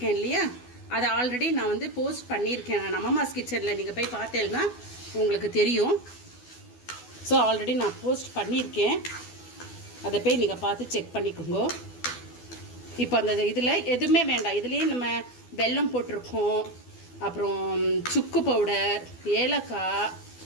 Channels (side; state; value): right; late; 12 ms